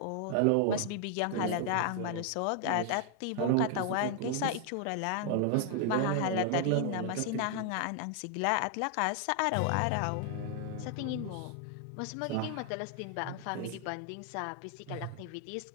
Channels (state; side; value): different; both; correlation 0.00